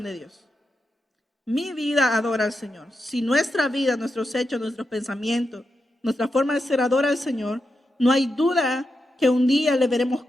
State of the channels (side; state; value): both; normal; correlation 0.87